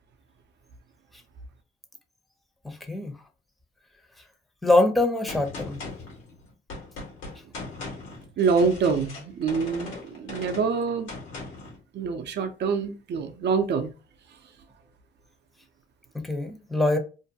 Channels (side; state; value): both; normal; correlation 0.53